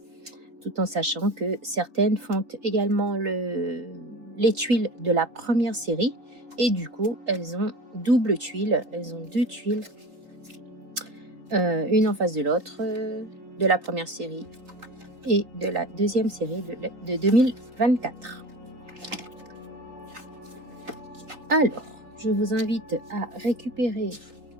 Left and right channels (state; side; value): late; left; 3.7 ms